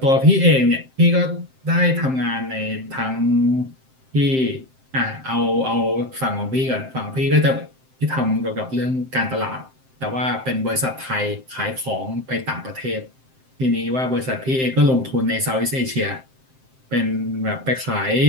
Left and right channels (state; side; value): late; left; 7.7 ms